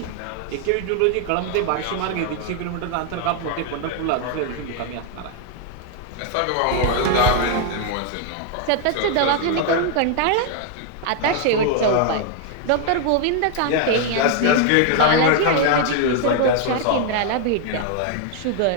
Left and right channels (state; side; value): different; both; correlation 0.00